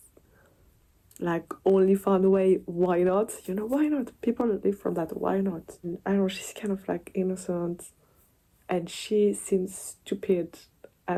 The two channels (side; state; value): both; identical; correlation 1.00